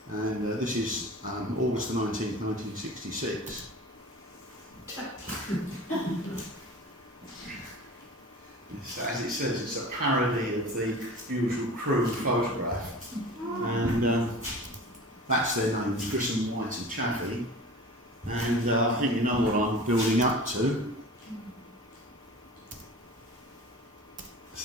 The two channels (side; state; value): both; normal; correlation 0.38